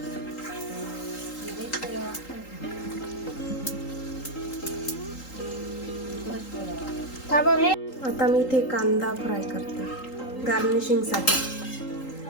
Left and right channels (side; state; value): right; late; 3.8 ms